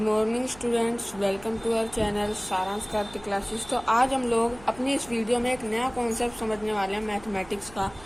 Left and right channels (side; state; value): right; noise; hum, 20 dB below the sound